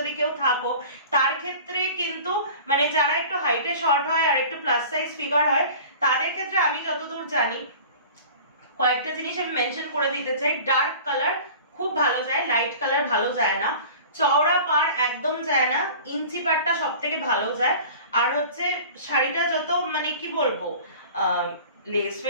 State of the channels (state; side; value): inverted; both; correlation -0.41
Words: কেউ থাকো তার ক্ষেত্রে কিন্তু মানে যারা একটু হাইটে শর্ট হয় আর একটু প্লাস সাইজ ফিগার হয় তাদের ক্ষেত্রে আমি যতদূর জানি কয়েকটা জিনিস আমি মেনশন করে দিতে চাই। ডার্ক কালার খুব ভালো যায়, লাইট কালার ভালো যায় না, চওড়া পাড় একদম যায় না, ইঞ্চি পাড়টা সব থেকে ভালো যায়। আর হচ্ছে শাড়িটা যত মানে কি বলবো লেস